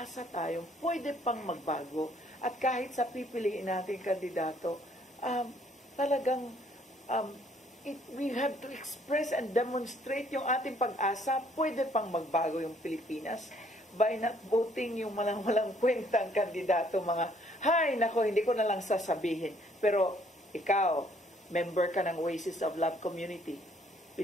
tayo, pwede pang magbago. At kahit sa pipiliin natin kandidato, talagang we have to express and demonstrate yung ating pag-asa, pwede pang magbago yung Pilipinas by not voting yung walang kwentang kandidato, mga, hay, nako, hindi ko na lang sasabihin. Pero ikaw, member ka ng Oasis of Love Community,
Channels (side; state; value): both; normal; correlation 0.64